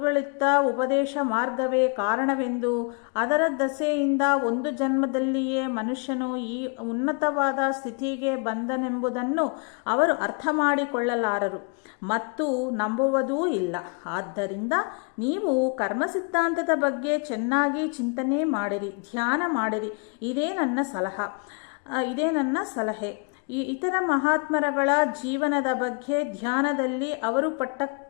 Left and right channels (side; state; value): right; quieter; 36.2 dB